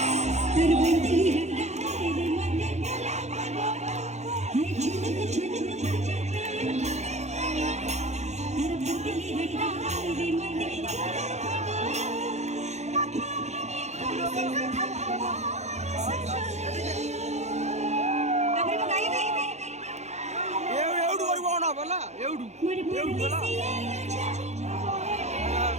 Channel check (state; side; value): late; left; 0.33 ms